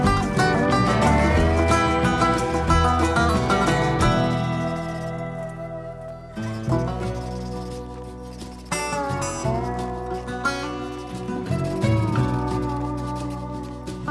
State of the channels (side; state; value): both; identical; correlation 1.00